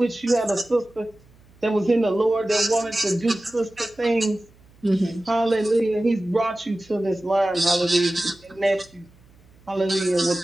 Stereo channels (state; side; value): noise; right; hum, 28 dB below the sound